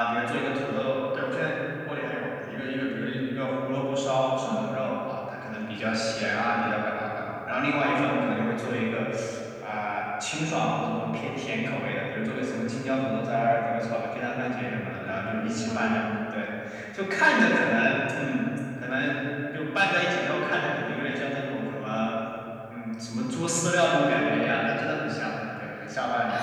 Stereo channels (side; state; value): both; identical; correlation 1.00